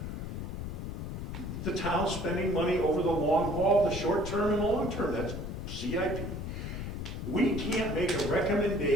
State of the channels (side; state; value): left; noise; rumble, 5 dB below the sound